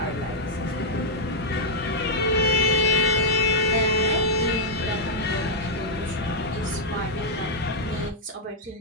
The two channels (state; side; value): normal; both; correlation -0.04